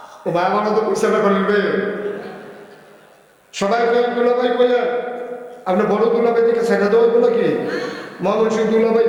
ও ভাই আমার তো পয়সাটা করবে সবাই দুলাভাই বললেন, আপনি বড় দুলাভাই দিকে ছেড়ে দেওয়া বলো কি মহামন সিং দুলাভাই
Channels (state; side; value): identical; both; correlation 1.00